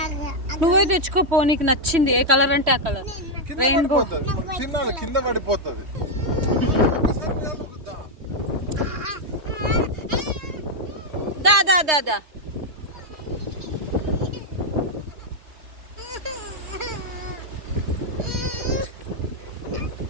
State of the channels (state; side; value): late; left; 3.1 ms